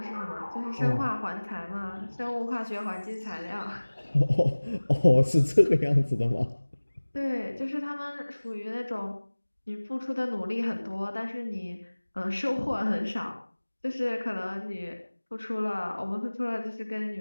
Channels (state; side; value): inverted; both; correlation -1.00